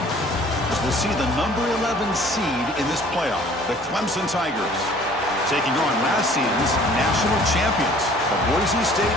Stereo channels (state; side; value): normal; both; correlation 0.53